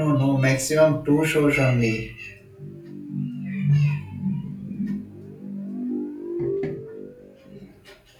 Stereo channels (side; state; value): both; identical; correlation 1.00